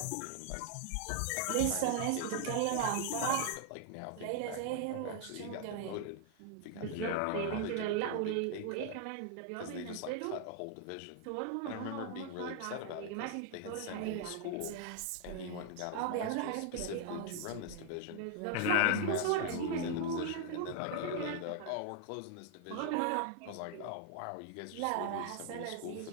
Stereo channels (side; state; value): both; different; correlation 0.00